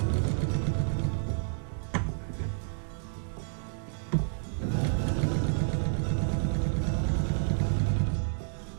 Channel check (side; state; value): left; silent; digital silence